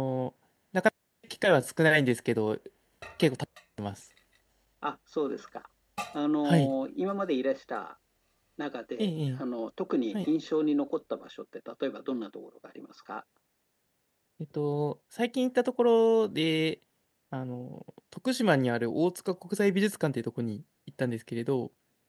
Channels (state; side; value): identical; both; correlation 1.00